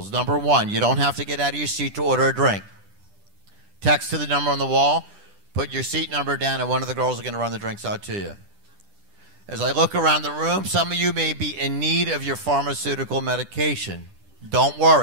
Number one, you don't have to get out of your seat to order a drink. Text to the number on the wall, put your seat number down, and one of the girls are going to run the drinks out to you. As I look around the room, some of you may be in need of your pharmaceutical medication. Don't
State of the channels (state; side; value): late; left; 10 ms